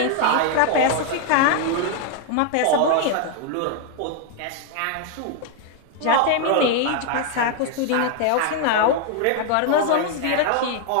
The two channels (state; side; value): different; both; correlation 0.00